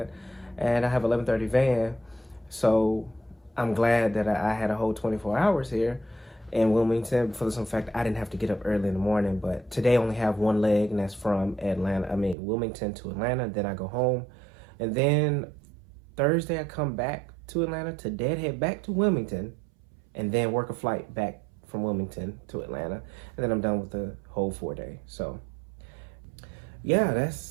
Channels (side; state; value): left; drops out; at 12.4 s